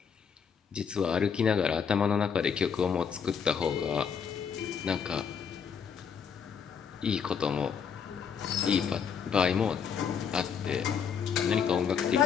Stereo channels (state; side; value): quieter; right; 6.9 dB